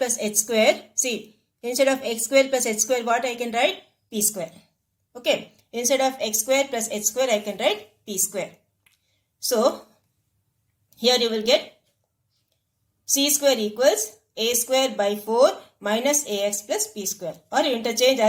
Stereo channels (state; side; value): identical; both; correlation 1.00